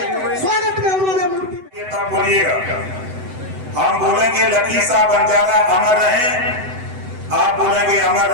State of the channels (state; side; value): late; left; 7.9 ms